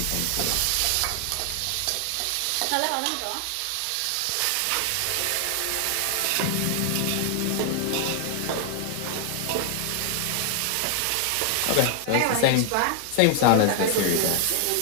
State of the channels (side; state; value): both; different; correlation 0.00